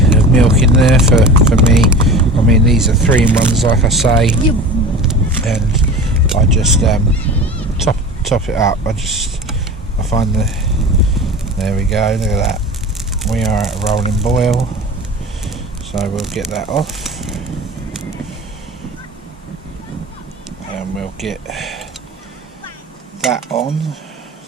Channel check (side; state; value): both; normal; correlation 0.35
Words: of milk in there for me. I mean, these are 3-in-1s, like I say, and I just top it up. I find there we go, look at that, we are at a rolling boil, so we'll get that off. And we'll get that on